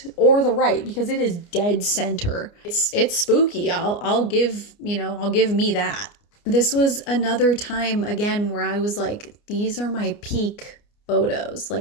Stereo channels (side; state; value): right; late; 29 ms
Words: or the right, because it is dead center. It's spooky. I'll give me that. This was another time again where I was like, these are my peak photos.